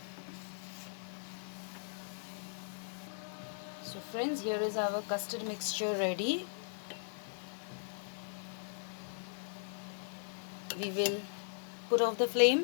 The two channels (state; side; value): silent; right; 52 dB below the other